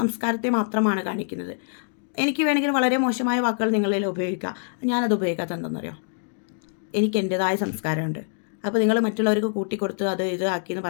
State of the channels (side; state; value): right; silent; digital silence